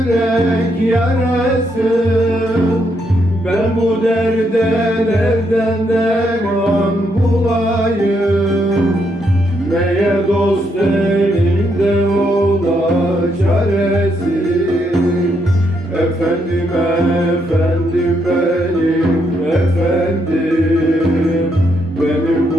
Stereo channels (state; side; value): normal; both; correlation 0.77